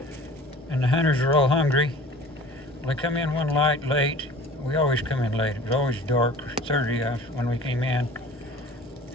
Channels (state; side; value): normal; both; correlation 0.44